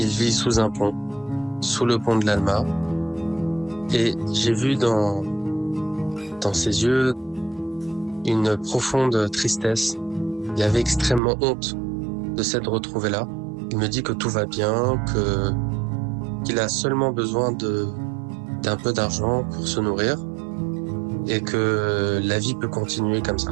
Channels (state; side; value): drops out; left; at 11.2 s